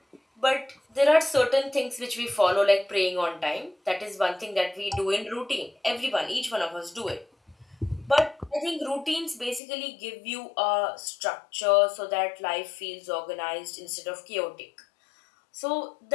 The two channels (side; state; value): right; drops out; at 9.6 s